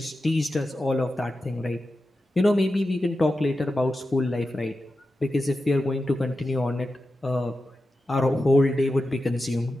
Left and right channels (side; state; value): both; normal; correlation 0.91